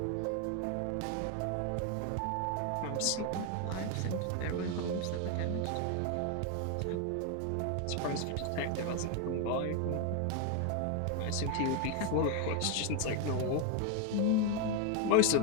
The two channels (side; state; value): both; different; correlation 0.01